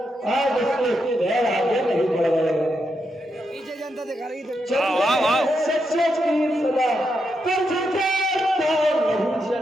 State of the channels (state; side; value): normal; both; correlation 0.83